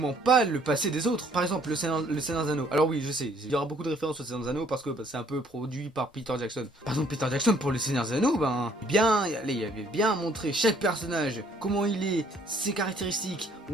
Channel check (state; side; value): normal; both; correlation 0.62